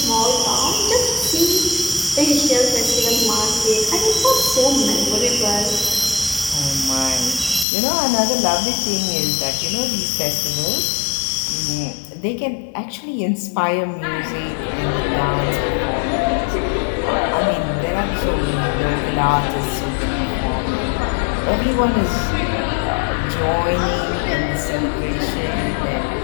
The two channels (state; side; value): drops out; right; at 7.7 s